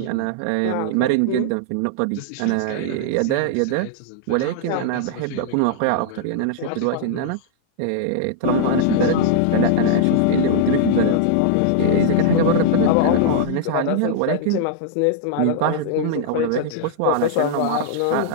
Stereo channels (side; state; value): both; different; correlation -0.01